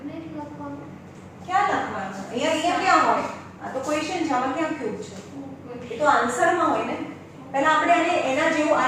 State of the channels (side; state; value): both; identical; correlation 1.00